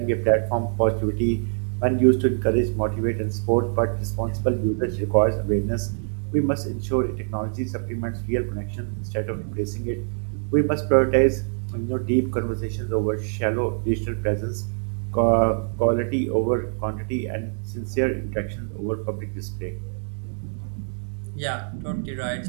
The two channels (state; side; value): silent; left; 59 dB below the other